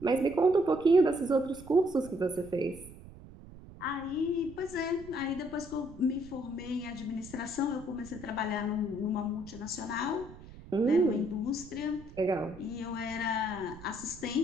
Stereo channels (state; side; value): noise; right; rumble, 17 dB below the sound